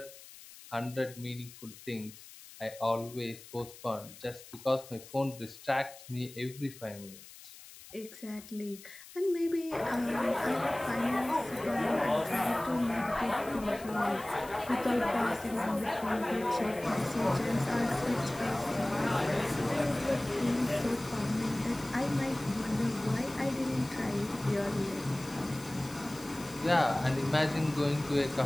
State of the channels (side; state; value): left; noise; hiss, 18 dB below the sound